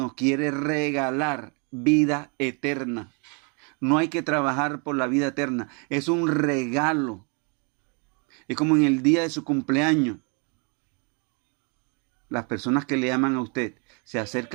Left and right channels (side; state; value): left; quieter; 35.2 dB